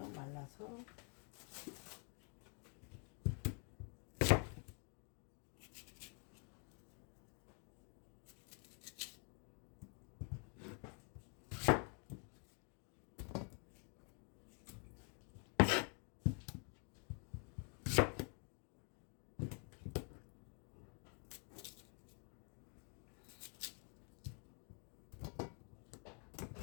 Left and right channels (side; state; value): right; quieter; 39.0 dB